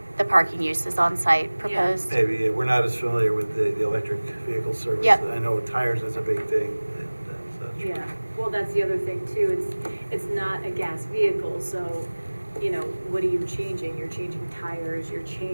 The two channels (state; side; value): inverted; both; correlation -1.00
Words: the parking uses on site proposed. Maybe, we're not as familiar with the electric vehicle service. Yep. I know tires is a big thing and such. Yeah, well, that's the other thing too, it's not a gas vehicle, so, what are you changing? You're changing tires, you're